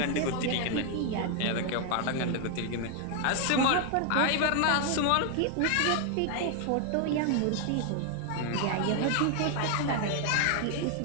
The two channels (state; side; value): different; both; correlation 0.00